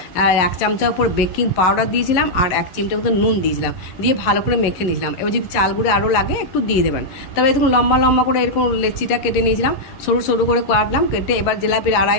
আর 1 চামচা উপর বেকিং পাউডার দিয়েছিলাম, আর 1 চিমটা মতো নুন দিয়েছিলাম, দিয়ে ভালো করে মেখে নিয়েছিলাম। এবার যদি চাল গুঁড়ি আরও লাগে একটু দিয়ে দেবেন। তবে এরকম লম্বা লম্বা করে এরকম লেচিটা কেটে নিয়েছিলাম, সরু সরু করে কাটলাম, কেটে এবার জিলাপির আড়াই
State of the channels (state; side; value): late; right; 11 ms